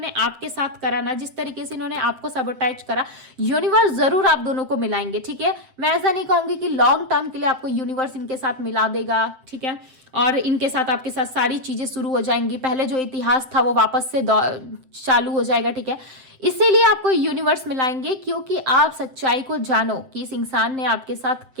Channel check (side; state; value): left; late; 7.7 ms